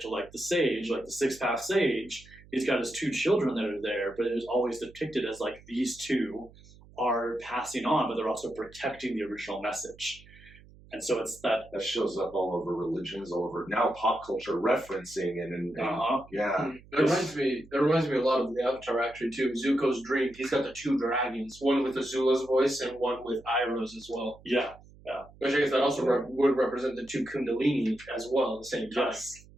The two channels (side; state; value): right; noise; hum, 23 dB below the sound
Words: to like the sage, like the sixth path sage, he's got his two children that are there, but it is always depicted as like these two are passing on, but they're also protecting the original message. And so it's that shows up all over religions, all over now pop culture referencing and yeah. It reminds me a lot of the Avatar actually too. Zuko's dream. He's got the two dragons, one with Azula's voice and one with Iroh's as well. Yeah. Which I guess that also would represent the two Kundalini as well at the same time. Yes.